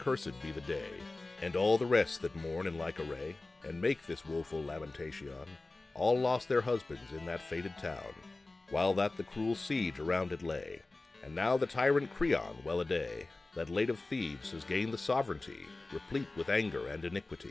be the day, and all the rest that mourn in like array, and make this woeful lamentation, all lost their husbands in that fated town, while that the cruel siege around it lay. And now the tyrant Creon, well-a-day, that late of Thebes has gained the sovereignty, replete with anger and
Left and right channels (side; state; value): right; quieter; 3.2 dB